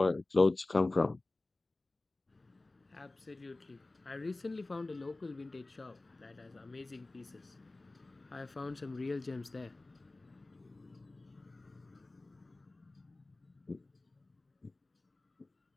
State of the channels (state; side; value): quieter; right; 3.0 dB